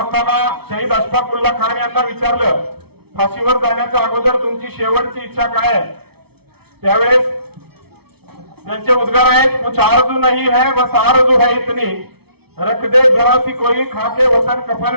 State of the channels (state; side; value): late; left; 0.96 ms